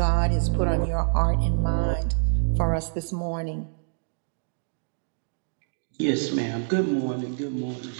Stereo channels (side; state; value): left; silent; digital silence